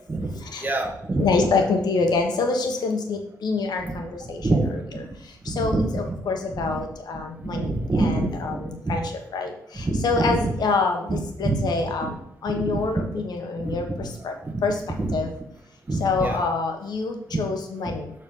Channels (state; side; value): normal; both; correlation 0.65